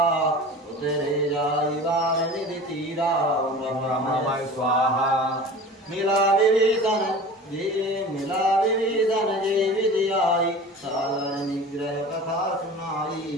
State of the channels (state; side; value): normal; both; correlation 0.38